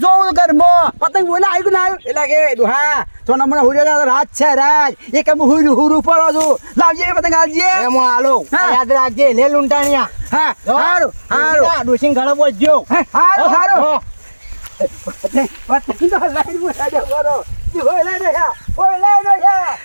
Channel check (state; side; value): inverted; both; correlation -1.00